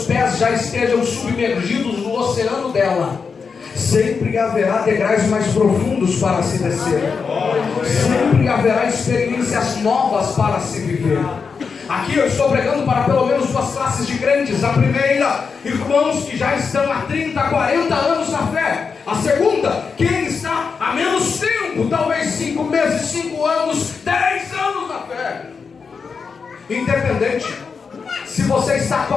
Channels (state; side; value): quieter; right; 5.5 dB